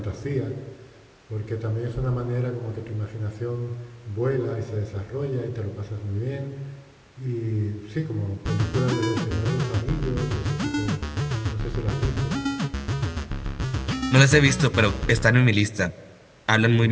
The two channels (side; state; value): both; identical; correlation 1.00